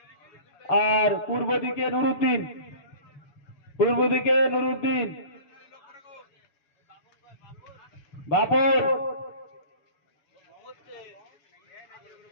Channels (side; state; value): right; late; 7.0 ms